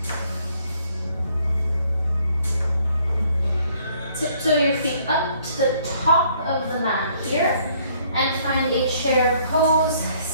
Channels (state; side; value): inverted; both; correlation -0.64